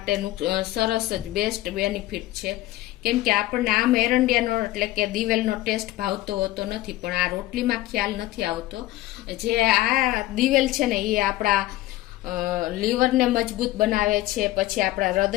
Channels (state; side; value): quieter; right; 16.5 dB